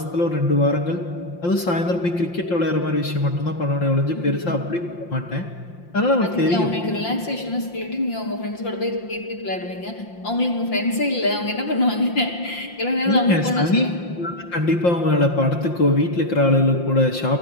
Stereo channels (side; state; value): right; late; 5.7 ms